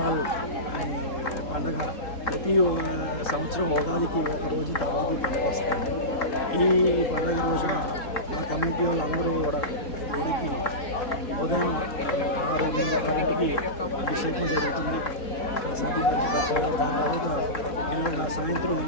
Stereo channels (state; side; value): late; right; 3.7 ms